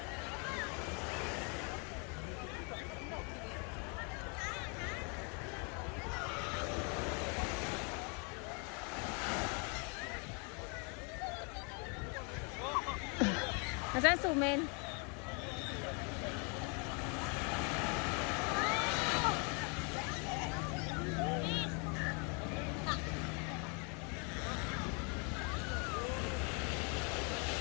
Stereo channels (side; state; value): right; quieter; 35.1 dB